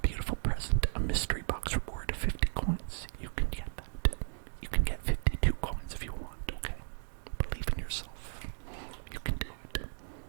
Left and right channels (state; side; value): silent; left; digital silence